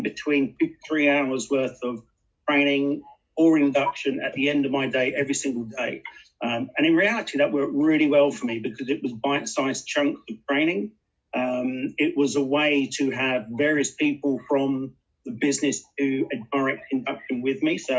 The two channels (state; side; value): identical; both; correlation 1.00